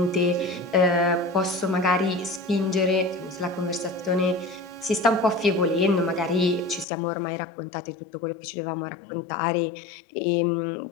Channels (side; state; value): right; drops out; at 6.9 s